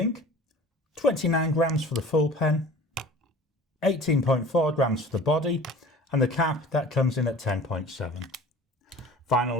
29 grams for the full pen. 18.4 grams for the body. And the cap, that comes in at 10.7.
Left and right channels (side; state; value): both; normal; correlation 0.43